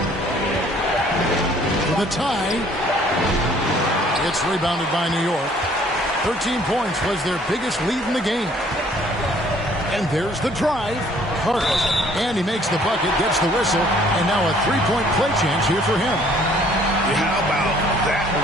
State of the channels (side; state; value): both; normal; correlation 0.59